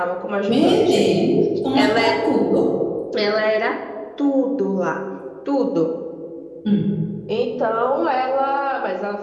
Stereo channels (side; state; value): both; identical; correlation 1.00